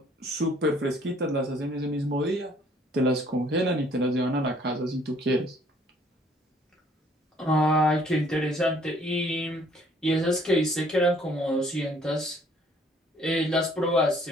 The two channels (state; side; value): normal; both; correlation 0.60